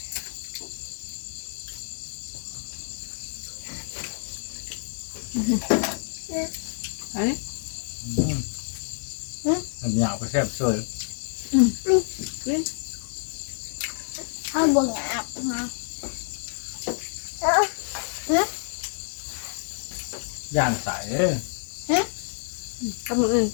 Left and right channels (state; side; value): silent; right; digital silence